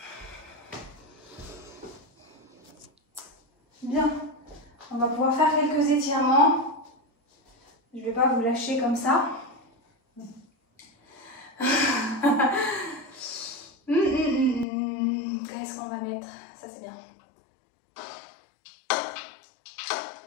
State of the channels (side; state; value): right; drops out; at 14.7 s